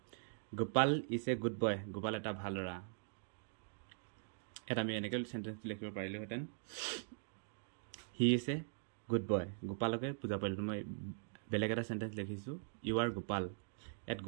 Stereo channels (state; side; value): silent; left; digital silence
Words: Gopal is a good boy, Gopal এটা ভাল ল'ৰা। এটা আমি এনেকৈ সেন্টেন্স লিখিব পাৰিলোহেঁতেন he is a good boy, গোপালকে বুজা পাৰিলো। মই বেলেগ এটা সেন্টেন্স লিখিছো ইউ আৰ গোপাল। ইয়াত